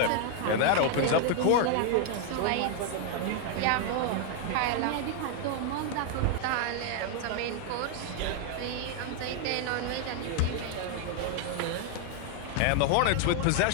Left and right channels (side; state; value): both; different; correlation 0.00